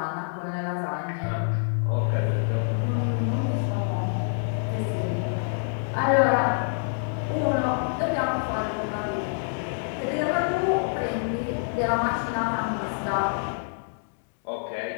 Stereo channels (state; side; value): silent; right; digital silence